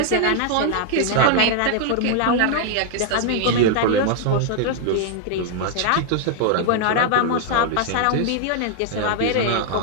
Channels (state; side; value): different; both; correlation 0.00